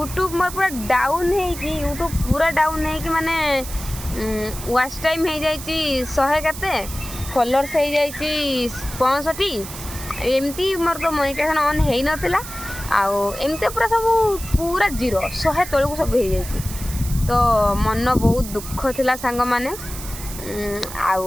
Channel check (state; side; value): noise; right; hiss, 11 dB below the sound